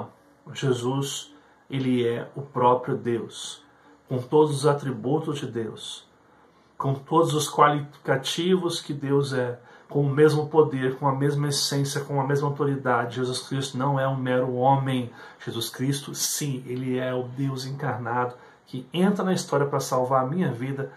Jesus, ele é o próprio Deus, com todos os atributos de Deus, com todos os qualificativos que Deus é, com o mesmo poder, com a mesma essência, com a mesma autoridade. Jesus Cristo não é um mero homem. Jesus Cristo, sim, ele é o Deus encarnado, que entra na história para salvar a minha vida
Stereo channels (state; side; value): identical; both; correlation 1.00